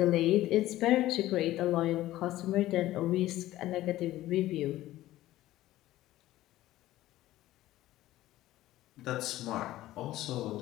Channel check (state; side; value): quieter; right; 15.3 dB